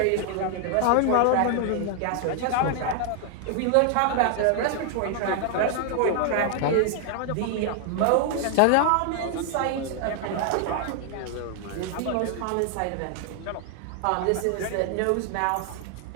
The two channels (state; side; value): different; both; correlation 0.00